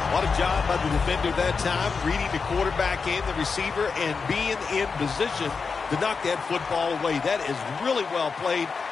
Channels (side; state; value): right; quieter; 5.1 dB